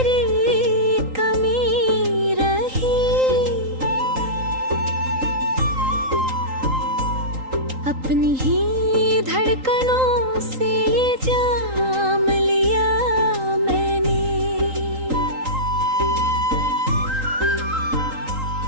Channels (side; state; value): left; late; 3.8 ms